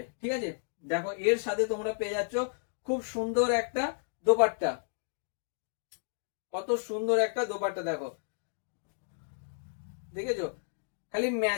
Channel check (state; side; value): silent; right; digital silence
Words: ঠিক আছে। দেখো এর সাথে তোমরা পেয়ে যাচ্ছ খুব সুন্দর একটা দোপাট্টা। কত সুন্দর একটা দোপাট্টা দেখো, দেখেছো। খালি